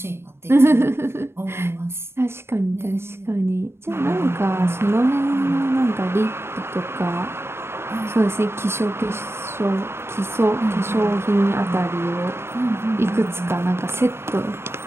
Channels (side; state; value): left; late; 0.12 ms